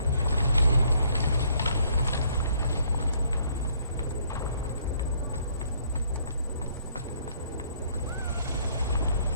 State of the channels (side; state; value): both; inverted; correlation -0.65